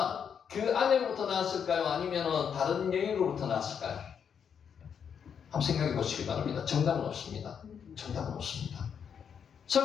그 아내로부터 낳았을까요? 아니면 다른 여인으로부터 낳았을까요? 한번 생각해 보시기 바랍니다. 정답은 없습니다. 정답은 없습니다.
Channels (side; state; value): right; quieter; 7.4 dB